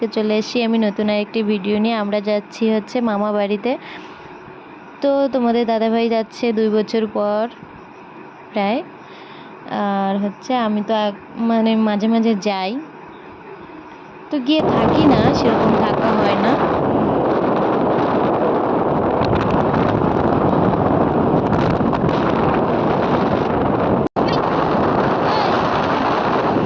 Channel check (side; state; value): both; identical; correlation 1.00